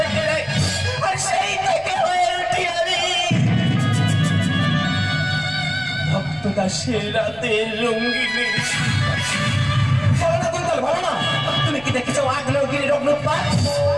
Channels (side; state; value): left; noise; rumble, 25 dB below the sound